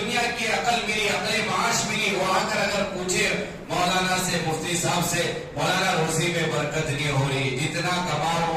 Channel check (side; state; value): both; identical; correlation 1.00